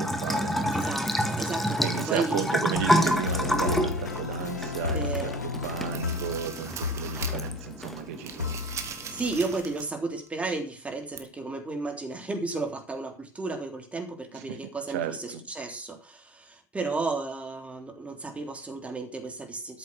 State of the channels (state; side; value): normal; both; correlation 0.47